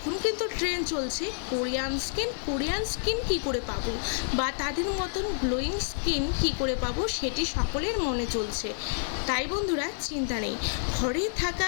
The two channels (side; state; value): right; silent; 59 dB below the other